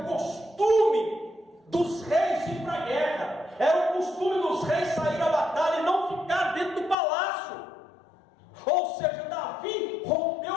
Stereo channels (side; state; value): right; drops out; at 7.0 s